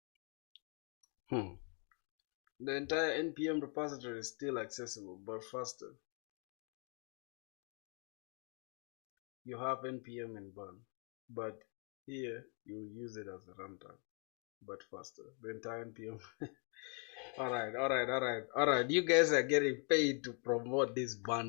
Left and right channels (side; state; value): right; quieter; 37.2 dB